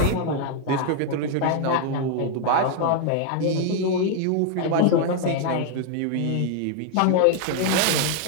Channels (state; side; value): different; both; correlation 0.00